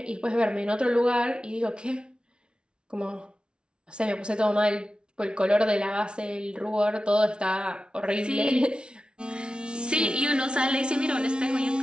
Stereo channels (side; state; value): left; late; 0.056 ms